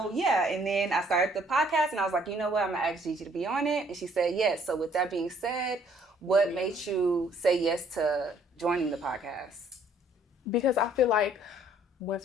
yeah. And then I started the podcast, and I was like, you know what? I'm going to ask Gigi to be on it. And she said yes. So, with that being said, what made you say yes to joining the podcast? Because I feel like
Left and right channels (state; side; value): normal; both; correlation 0.62